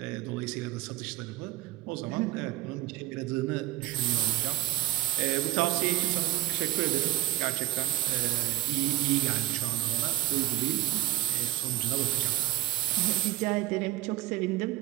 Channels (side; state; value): left; quieter; 15.4 dB